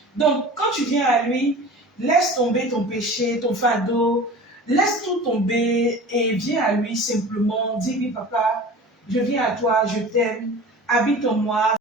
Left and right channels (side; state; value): both; normal; correlation 0.38